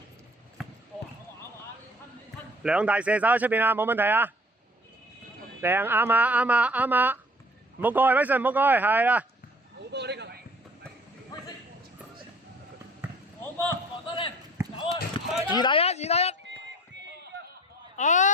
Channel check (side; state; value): both; normal; correlation 0.51